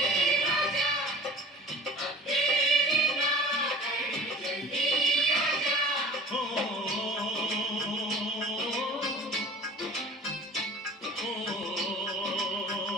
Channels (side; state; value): both; normal; correlation 0.42